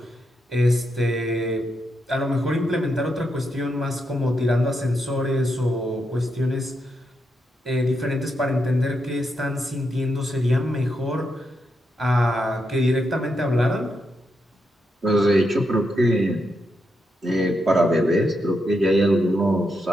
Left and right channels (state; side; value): normal; both; correlation 0.83